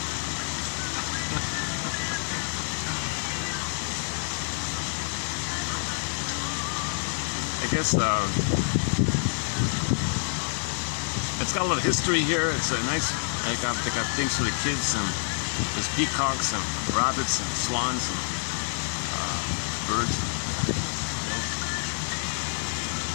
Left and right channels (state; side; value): silent; right; digital silence